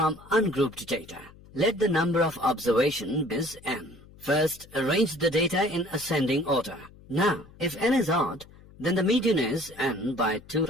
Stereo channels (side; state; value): left; noise; hum, 23 dB below the sound